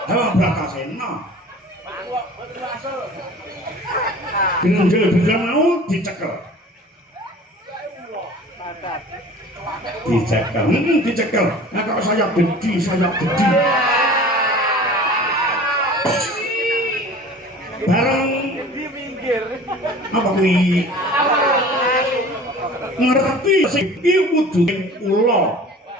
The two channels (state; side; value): normal; both; correlation 0.43